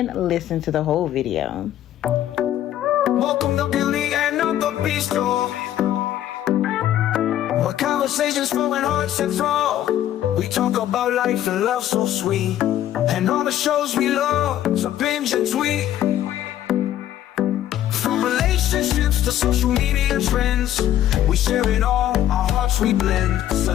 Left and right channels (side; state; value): right; quieter; 12.1 dB